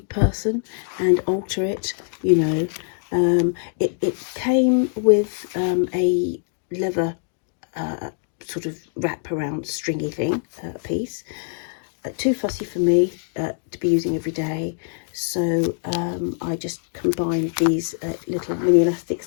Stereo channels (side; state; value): right; silent; digital silence